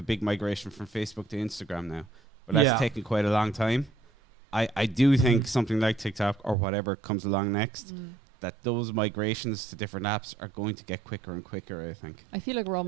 big migration from Facebook to Instagram now, but that's taken quite a long time. I do think something like TikTok or whatever comes along next, that those migrations to different apps are going to get quicker and quicker, I think. I feel like we're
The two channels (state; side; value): drops out; left; at 6.6 s